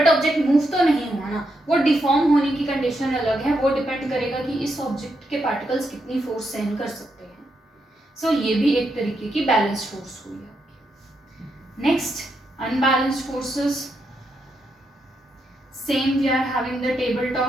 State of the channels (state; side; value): normal; both; correlation 0.81